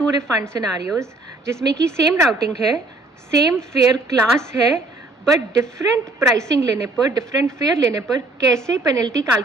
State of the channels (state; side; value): quieter; left; 3.0 dB